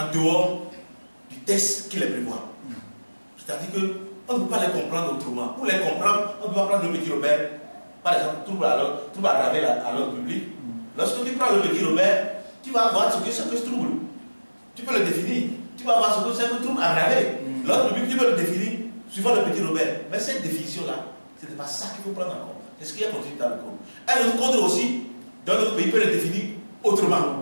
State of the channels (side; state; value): both; inverted; correlation -1.00